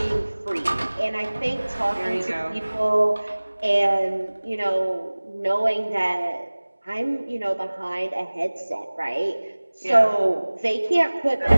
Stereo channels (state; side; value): inverted; both; correlation -1.00